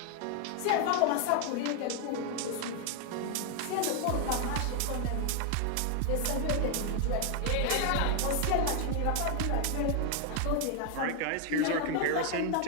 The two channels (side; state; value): both; different; correlation 0.00